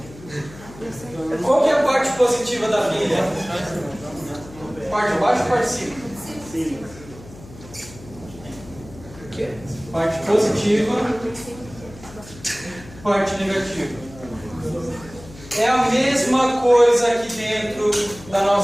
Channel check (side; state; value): left; noise; hum, 19 dB below the sound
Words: Qual que é a parte positiva da pilha? Parte de baixo ou parte de cima? Sim. Parte positiva, parte negativa. É a mesma coisa aqui dentro da